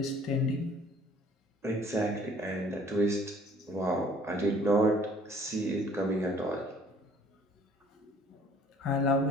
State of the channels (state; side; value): normal; both; correlation 0.57